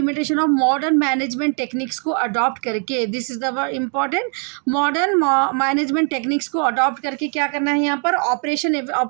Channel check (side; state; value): left; quieter; 39.6 dB